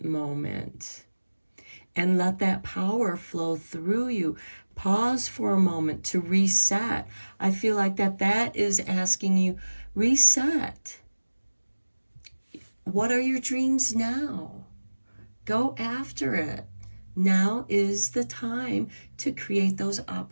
moment and let that power flow through you. Pause for a moment to reset. I feel like that is asking you, reset. What are your dreams now? Go after it. Now is the time to create those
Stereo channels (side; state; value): both; inverted; correlation -1.00